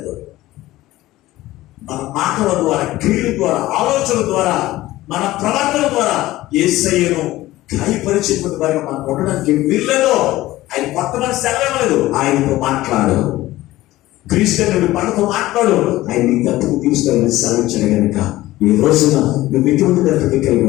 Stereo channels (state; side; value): quieter; right; 16.7 dB